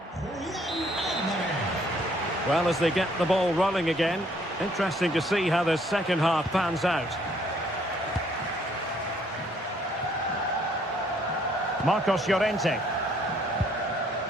Well, as they get the ball rolling again, interesting to see how the second half pans out. Marcos Llorente.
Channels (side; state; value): both; normal; correlation 0.65